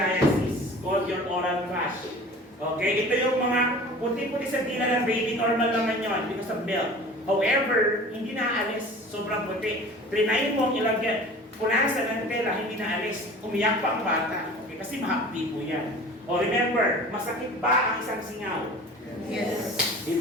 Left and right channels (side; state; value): both; normal; correlation 0.42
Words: called your oral thrush. Okay? Ito yung mga puti-puti sa dila ng baby, normal naman yun because of milk. However, hindi naaalis. Sobrang puti. Trinayin mo ang ilagyan. Punasan ng tela, hindi naalis. Umiyak pa ang bata. Okay? Kasi mahapdi po yan. O remember, masakit ba ang isang singaw? Yes.